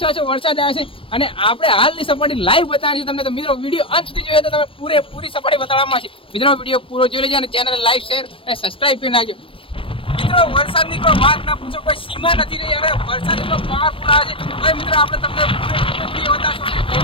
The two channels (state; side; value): late; right; 0.26 ms